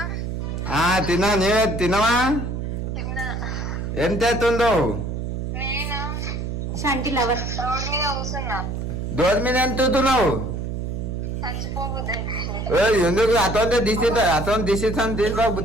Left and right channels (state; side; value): noise; right; hum, 4 dB below the sound